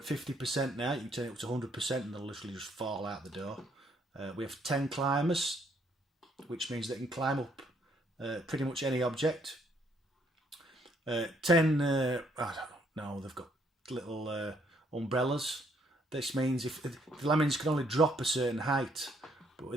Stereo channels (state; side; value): normal; both; correlation 0.69